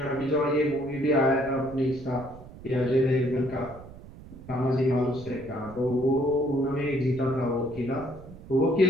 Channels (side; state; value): right; noise; rumble, 17 dB below the sound